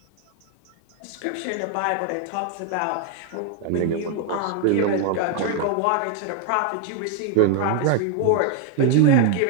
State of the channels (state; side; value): different; both; correlation 0.00